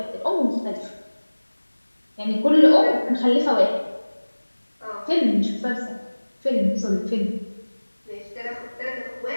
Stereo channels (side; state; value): both; inverted; correlation -1.00